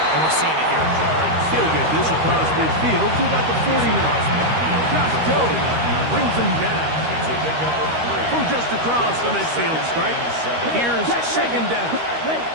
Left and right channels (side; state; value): left; late; 13 ms